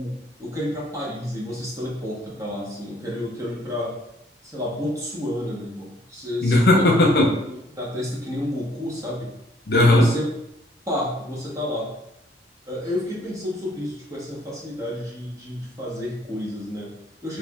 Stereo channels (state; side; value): normal; both; correlation 0.62